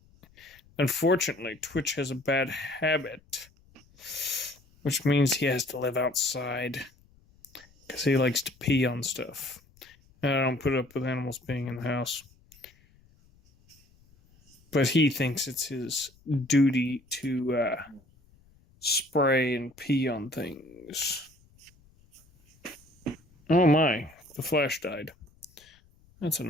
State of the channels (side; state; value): left; noise; rumble, 30 dB below the sound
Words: Unfortunately, Twitch has a bad habit, which means he has to live outside because he likes to pee on stuff. And I don't put up with animals being in the house. But he thinks it's his duty to spray and pee on things. Oh my, the flash died. That's